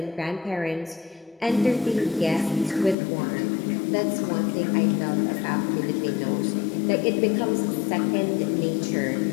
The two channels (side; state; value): right; drops out; at 3.0 s